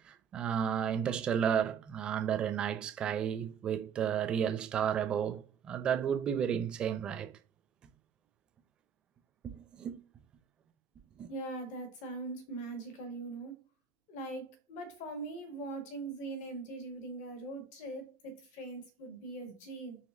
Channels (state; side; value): quieter; left; 7.3 dB